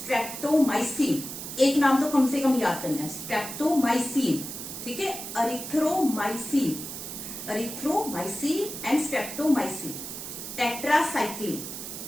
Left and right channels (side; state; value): right; noise; hiss, 8 dB below the sound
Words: एक नाम तो कम से कम याद करना है, स्ट्रेप्टोमाइसिन, ठीक है। अरिथ्रोमाइसिन, एंड स्ट्रेप्टोमाइसिन, टेट्रासाइक्लिन,